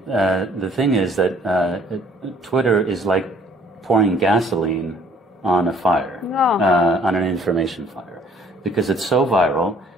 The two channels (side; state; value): both; normal; correlation 0.59